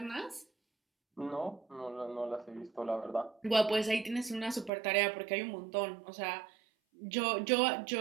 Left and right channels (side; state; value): left; drops out; at 4.7 s